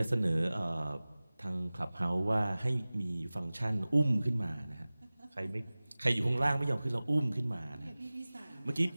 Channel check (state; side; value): inverted; both; correlation -0.99